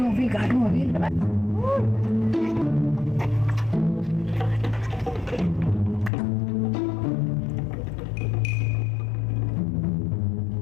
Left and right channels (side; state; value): right; drops out; at 6.1 s